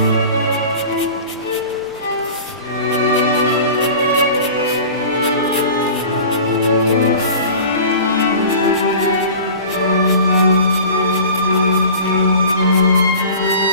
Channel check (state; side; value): inverted; both; correlation -0.39